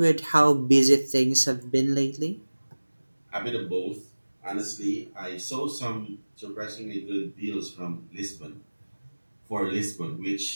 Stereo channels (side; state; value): both; inverted; correlation -1.00